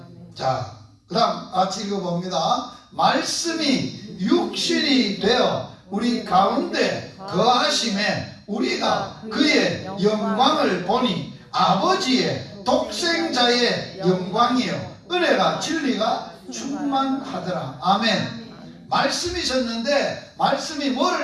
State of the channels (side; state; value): both; identical; correlation 1.00